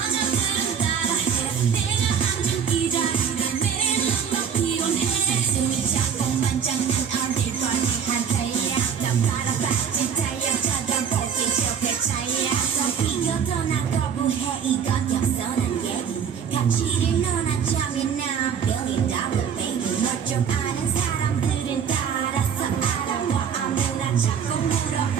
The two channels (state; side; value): quieter; left; 7.4 dB